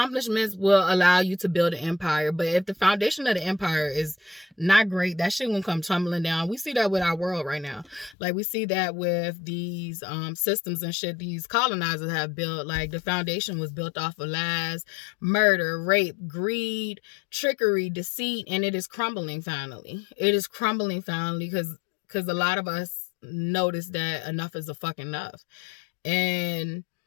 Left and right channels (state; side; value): drops out; right; at 8.2 s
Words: will allow you to build an empire, but if the foundation of the empire is not great, that shit won't come tumbling down. We see that with our world right now. Like, we see that with these systems and shit these colonizers have built. Like, the foundation was built off of lies, murder, rape, greed, trickery, deceit, and it is crumbling finally. It is crumbling finally because a lot of us notice that enough is a fucking enough. And